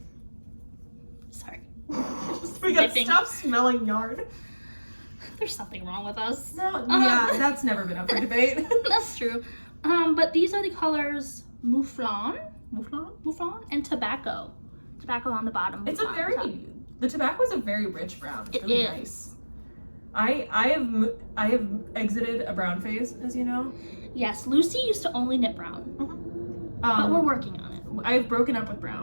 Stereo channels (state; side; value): inverted; both; correlation -1.00